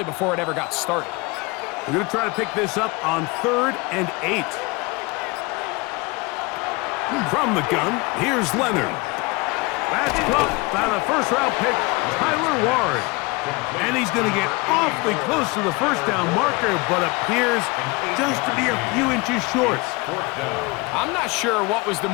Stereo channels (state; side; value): quieter; right; 25.6 dB